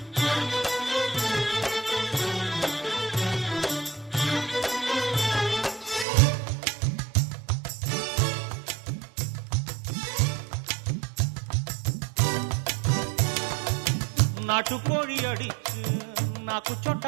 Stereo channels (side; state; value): left; drops out; at 6.1 s